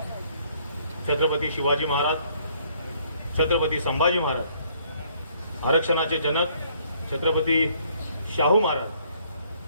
छत्रपती शिवाजी महाराज, छत्रपती संभाजी महाराज, आरक्षणाचे जनक छत्रपती शाहू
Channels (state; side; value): inverted; both; correlation -0.65